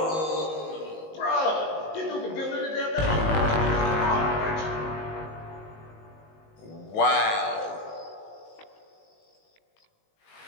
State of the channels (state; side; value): late; right; 19 ms